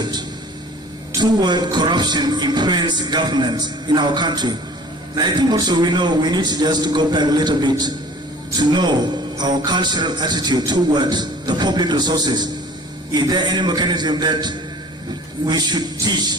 toward corruption influence governance in our country? And I think also we need to just go back a little bit to know our cultural attitude towards the public resources. Is there any mechanism that we should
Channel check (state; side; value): normal; both; correlation 0.47